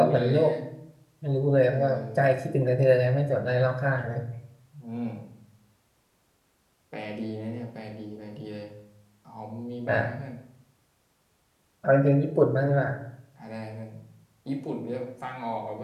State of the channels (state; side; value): identical; both; correlation 1.00